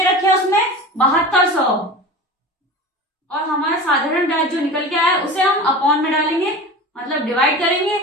रखे हैं उसमें, 7200। और हमारा साधारण ब्याज जो निकल के आया है उसे हम अपॉन में डालेंगे, मतलब डिवाइड करेंगे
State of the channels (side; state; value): both; normal; correlation 0.33